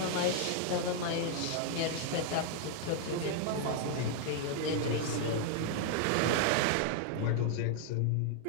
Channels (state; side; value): different; both; correlation 0.00